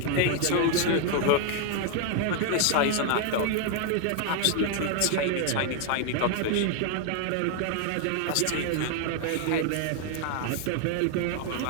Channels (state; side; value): different; both; correlation 0.01